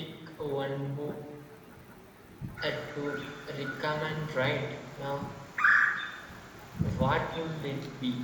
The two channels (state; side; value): identical; both; correlation 1.00